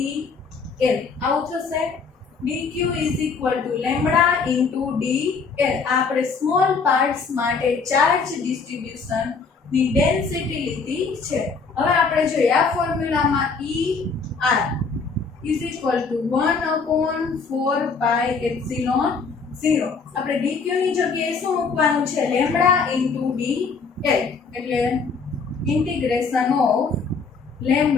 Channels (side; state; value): right; quieter; 4.9 dB